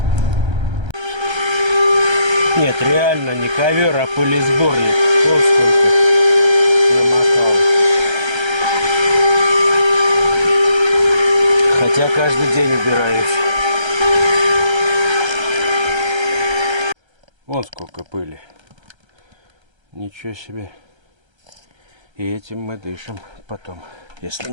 Нет, реально не ковер, а пылесборник. Вот сколько намокал. Хотя каждый день убираюсь. Вон сколько пыли. Ничего себе. И этим мы дышим потом, если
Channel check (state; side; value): late; left; 1.3 ms